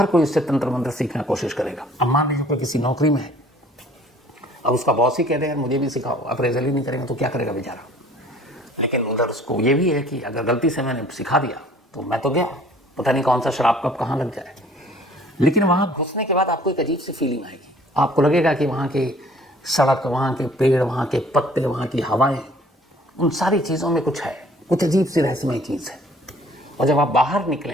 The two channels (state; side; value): normal; both; correlation 0.54